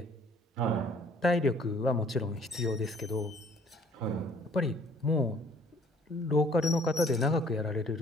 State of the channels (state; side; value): normal; both; correlation 0.57